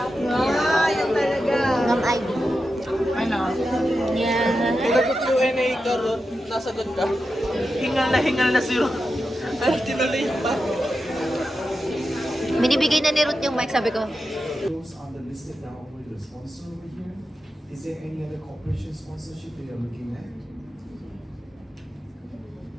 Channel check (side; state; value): both; normal; correlation 0.90